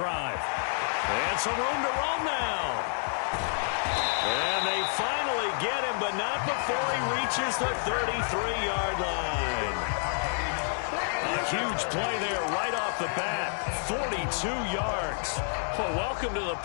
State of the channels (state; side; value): silent; right; 59 dB below the other